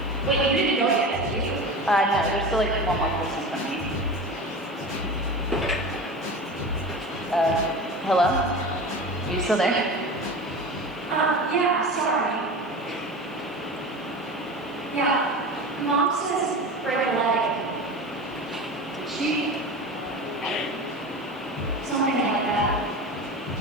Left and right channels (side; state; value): both; normal; correlation 0.30